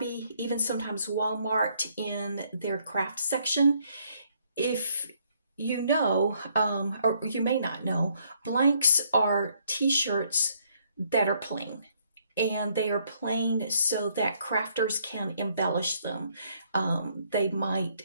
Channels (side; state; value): both; inverted; correlation -0.68